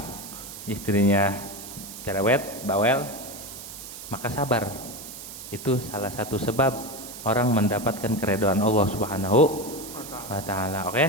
istrinya cerewet, bawel, maka sabar. Itu salah satu sebab orang mendapatkan keridhaan Allah Subhanahu wa taala. Oke?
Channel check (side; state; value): right; noise; hiss, 12 dB below the sound